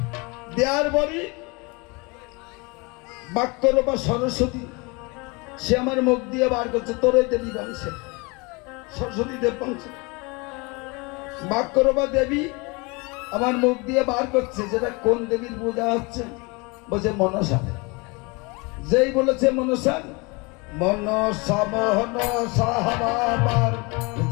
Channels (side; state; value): right; quieter; 27.8 dB